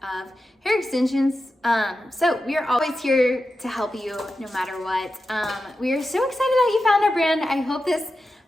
of hair extensions. So we are always here to help you no matter what. We are so excited that you found our brand. I hope this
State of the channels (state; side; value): normal; both; correlation 0.91